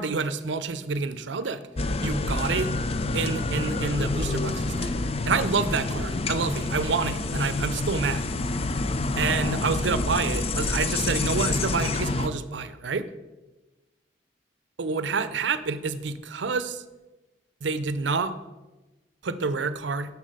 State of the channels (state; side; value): normal; both; correlation 0.34